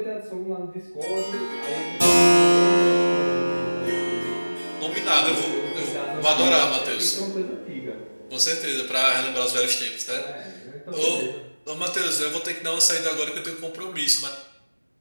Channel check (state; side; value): inverted; both; correlation -1.00